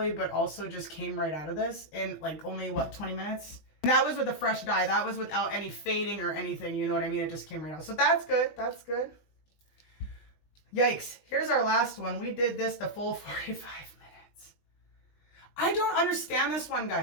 but also just came right out of this in like only what, 20 minutes. And that was with a fresh dye. That was without any fading or anything, you know what I mean? It just came right out. So that's good. That's good. Yikes. Here's our last one. We did this the full 45 minutes. I don't understand this one,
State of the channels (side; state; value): right; late; 20 ms